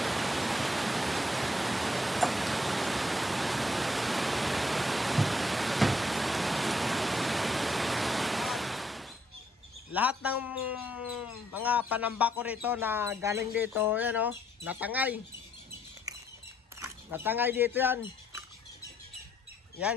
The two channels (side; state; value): both; normal; correlation 0.70